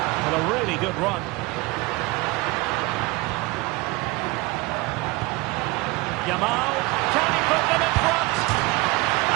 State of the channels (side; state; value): left; quieter; 22.8 dB